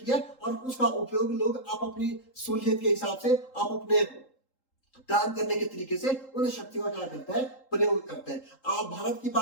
है और उसका उपयोग लोग आप अपनी सहूलियत के हिसाब से, आप अपने काम करने के तरीके से उन शक्तियों का क्या करता है, प्रयोग करते हैं। आप भारत की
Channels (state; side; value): late; right; 3.8 ms